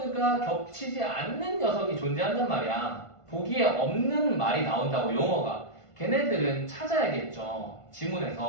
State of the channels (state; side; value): late; right; 1.5 ms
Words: 겹치지 않는 녀석이 존재한단 말이야. 보기에 없는 말이 나온다고 용어가. 걔네들은 찾아야겠죠.